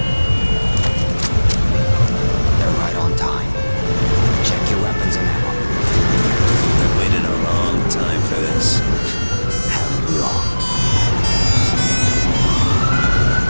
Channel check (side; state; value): both; inverted; correlation -1.00